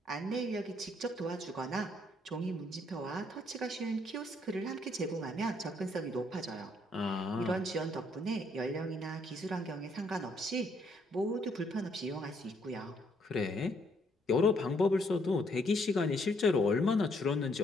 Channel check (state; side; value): normal; both; correlation 0.70